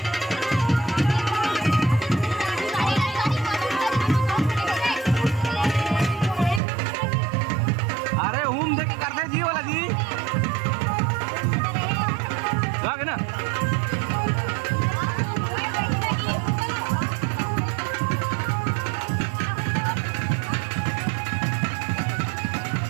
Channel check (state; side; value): drops out; left; at 6.6 s